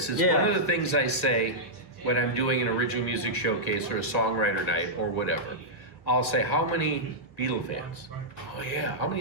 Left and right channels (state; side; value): late; right; 1.6 ms